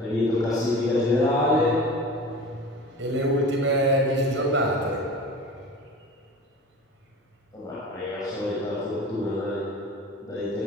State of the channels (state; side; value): normal; both; correlation 0.37